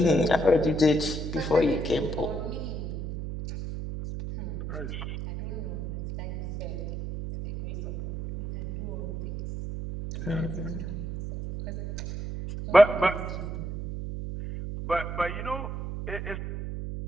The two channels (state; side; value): noise; right; hum, 5 dB below the sound